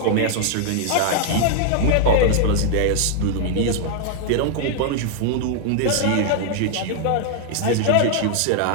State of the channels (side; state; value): both; different; correlation 0.00